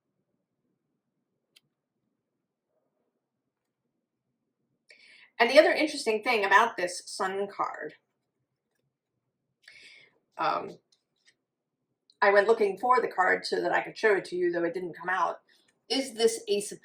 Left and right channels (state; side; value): identical; both; correlation 1.00